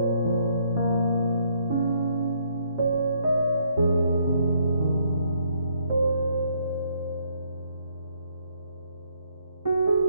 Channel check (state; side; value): inverted; both; correlation -0.69